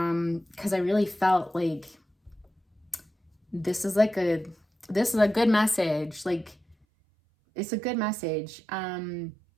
I really felt like this is like a this is a good message. Like, it's a good message. And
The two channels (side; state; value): left; drops out; at 6.8 s